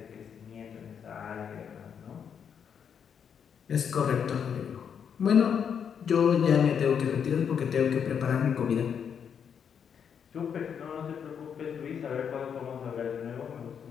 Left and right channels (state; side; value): quieter; right; 7.5 dB